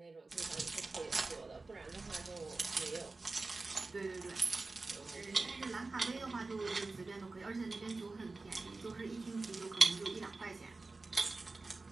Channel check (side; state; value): left; quieter; 3.6 dB